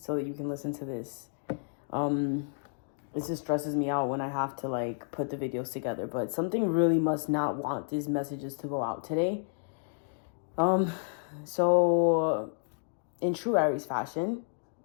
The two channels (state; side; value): silent; right; digital silence